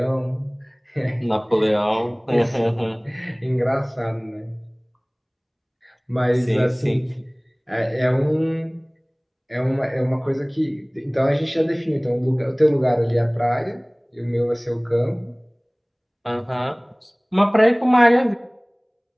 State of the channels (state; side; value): identical; both; correlation 1.00